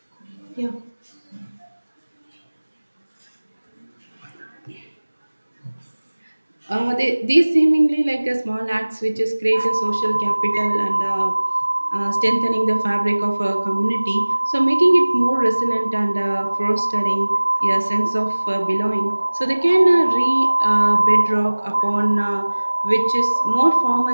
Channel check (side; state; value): both; inverted; correlation -1.00